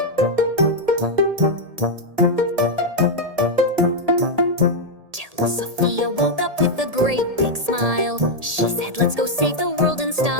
Till Sophia woke up with a great big smile. She said, "Let's go save the world in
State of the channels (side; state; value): left; late; 1.8 ms